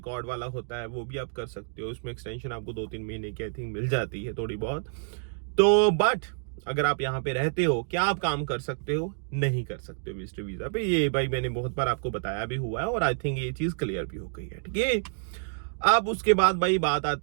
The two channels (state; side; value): silent; left; digital silence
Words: वाला होता है वो भी आप कर सकते हो। उसमें एक्सटेंशन आपको 2-3 महीने की आई थिंक मिल जाती है थोड़ी बहुत। तो बट अगर आप यहाँ पे रहते हो, क्या आप काम कर सकते हो? नहीं कर सकते हो विजिटर वीजा पे। ये भाई मैंने बहुत बार आपको बताया भी हुआ है और आई थिंक ये चीज क्लियर भी हो गई है। ठीक है, अब उसके बाद भाई बात